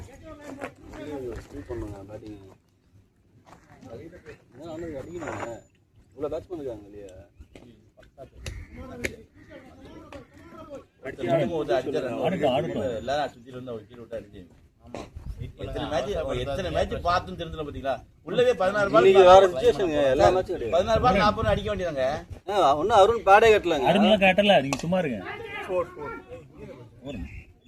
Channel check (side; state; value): both; identical; correlation 1.00